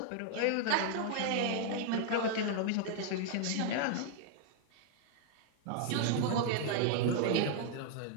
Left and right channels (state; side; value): different; both; correlation -0.01